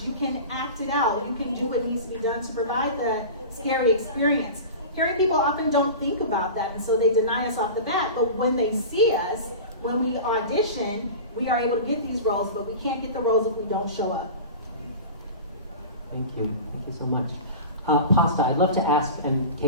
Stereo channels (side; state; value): both; inverted; correlation -0.32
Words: You can act it out. You can do what needs to be done to provide the scary experience. Hearing people often don't think about that, and so they deny us off the bat. But when they see us, when we audition, we are able to get these roles, but we can't get the roles if we don't show up. Thank you. Thank you so much. Pasta, I'd love to ask, and